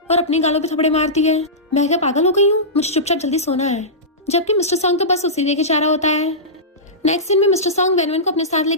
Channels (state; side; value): normal; both; correlation -0.17